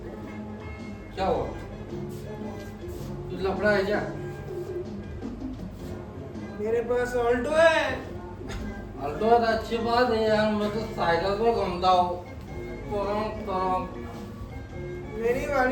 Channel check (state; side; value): identical; both; correlation 1.00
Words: क्या हुआ? तू लफड़ा है क्या? मेरे पास ऑल्टो है। ऑल्टो है तो अच्छी बात है यार, मैं तो साइकिल पे घूमता हूँ। मेरी